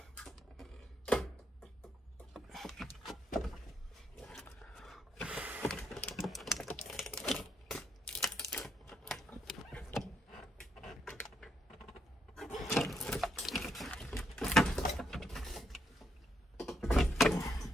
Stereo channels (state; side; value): normal; both; correlation 0.77